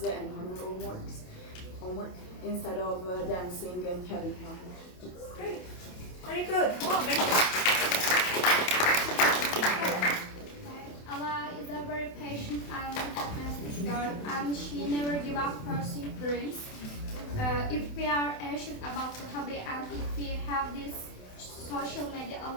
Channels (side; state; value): right; late; 28 ms